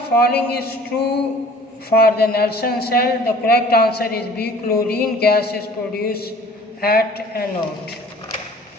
is true for the Nelson cell? The correct answer is B, chlorine gas is produced at anode.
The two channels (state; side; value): normal; both; correlation 0.49